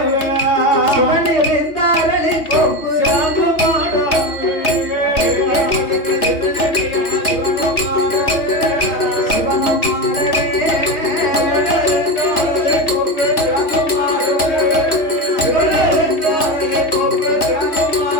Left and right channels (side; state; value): right; late; 3.0 ms